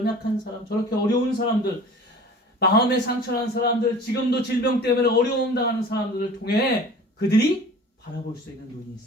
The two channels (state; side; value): normal; both; correlation 0.42